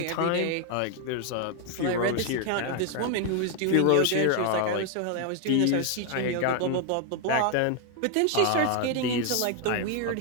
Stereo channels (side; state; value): both; different; correlation 0.01